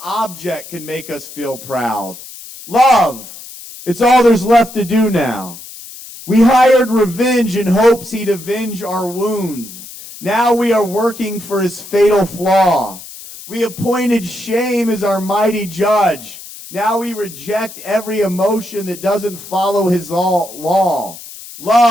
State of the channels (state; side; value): noise; left; hiss, 15 dB below the sound